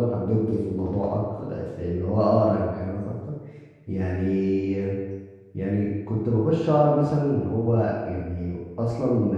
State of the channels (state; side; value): identical; both; correlation 1.00